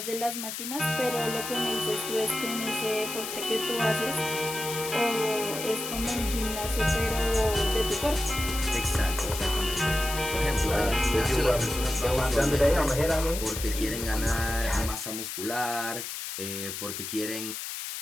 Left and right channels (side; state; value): left; noise; hiss, 6 dB below the sound